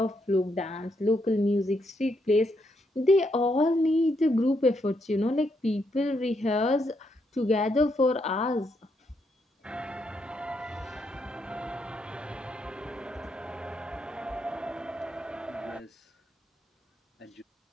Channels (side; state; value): both; normal; correlation 0.78